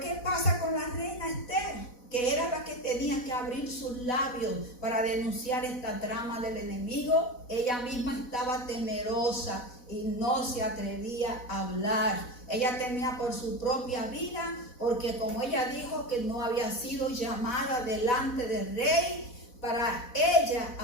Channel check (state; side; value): late; right; 4.1 ms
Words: pasa con la reina Esther? Que era la que tenía que abrir sus labios para denunciar esta trama del enemigo. Ella misma estaba temerosa y no se atrevía a hablar. Ella temía por su propia vida, porque como ella dijo que no había sido llamada delante del rey para ella